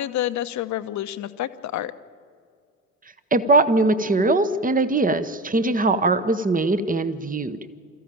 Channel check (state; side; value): normal; both; correlation 0.25